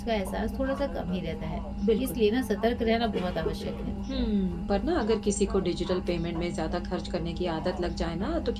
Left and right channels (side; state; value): both; identical; correlation 1.00